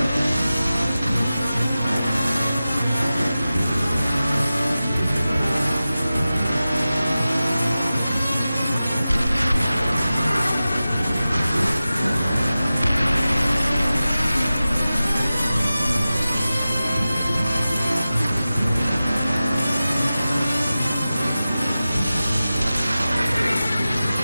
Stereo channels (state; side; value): inverted; both; correlation -0.95